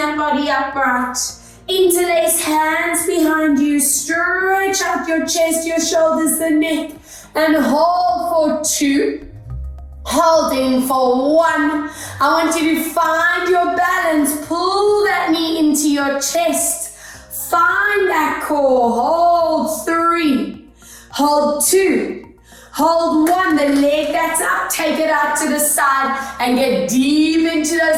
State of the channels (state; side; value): identical; both; correlation 1.00